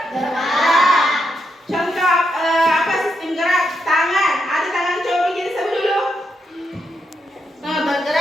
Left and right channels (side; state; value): both; normal; correlation 0.81